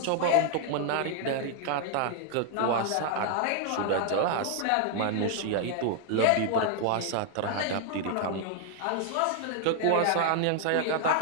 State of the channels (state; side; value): different; both; correlation 0.00